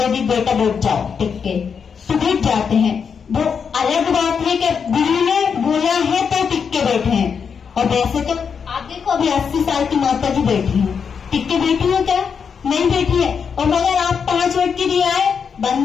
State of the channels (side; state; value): right; quieter; 6.4 dB